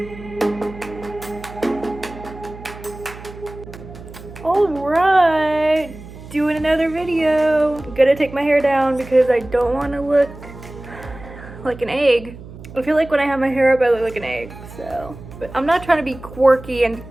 Alright, doing another video. I'm gonna take my hair down because I don't want to look like an egg. I feel like when I have my hair up I look like an egg, so. But I'm not trying to be quirky and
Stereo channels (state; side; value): noise; right; hum, 16 dB below the sound